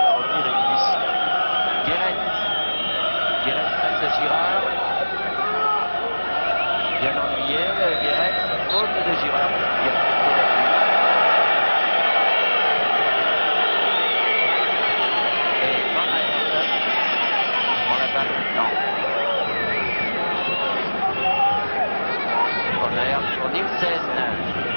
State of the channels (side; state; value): both; inverted; correlation -1.00